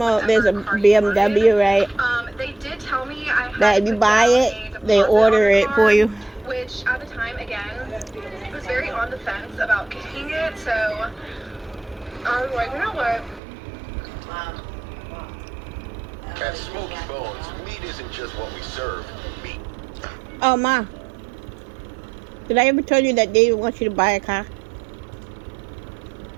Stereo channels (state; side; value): drops out; left; at 13.4 s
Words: there's a BMW, right? They did tell me I had that if you buy it, they order it for you. Which, at the time, again, was very on the fence about getting it, so... I was like, you know what? At Smoky Bones, meat isn't just what we serve. Meat. Oh, Ma. Did I ever tell you that David wants you to buy a car?